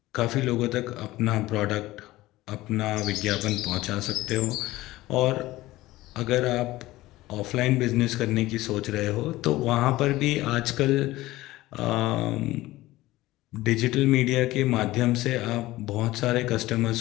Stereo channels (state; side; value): quieter; right; 17.6 dB